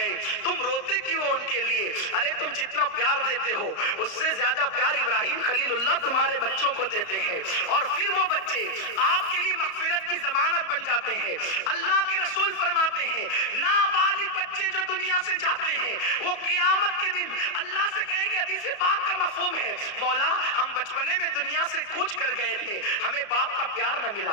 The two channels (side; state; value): right; late; 34 ms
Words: تم روتے کیوں ان کے لیے؟ ارے تم جتنا پیار دیتے ہو اس سے زیادہ پیار ابراہیم خلیل اللہ تمہارے بچوں کو دیتے ہیں، اور پھر وہ بچے آپ کے لیے مغفرت کی ضمانت بن جاتے ہیں. اللہ کے رسول فرماتے ہیں نابالغ بچے جو دنیا سے جاتے ہیں وہ قیامت کے دن اللہ سے کہیں گے، حدیث پاک کا مفہوم ہے، مولا ہم بچپنے میں دنیا سے کوچ کر گئے تھے، ہمیں باپ کا پیار نہ